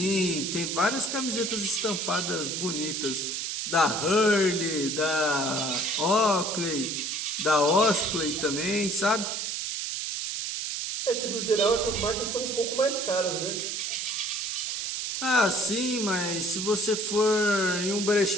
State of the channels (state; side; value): noise; right; hiss, 3 dB below the sound